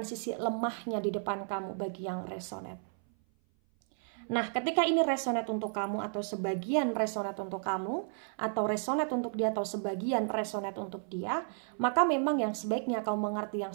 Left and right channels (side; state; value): left; silent; 56 dB below the other